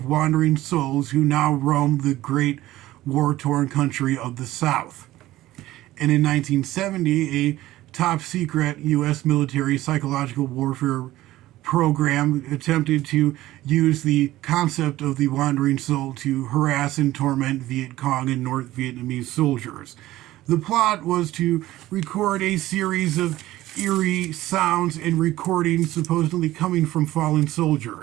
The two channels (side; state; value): left; quieter; 15.9 dB